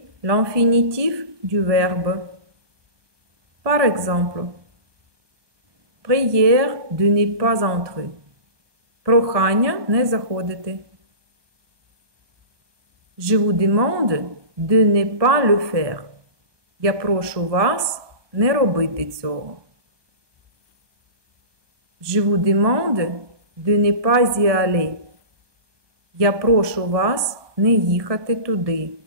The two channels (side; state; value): left; late; 1.2 ms